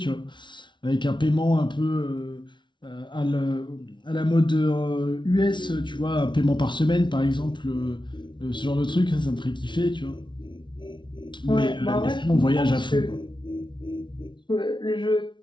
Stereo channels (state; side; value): late; right; 0.23 ms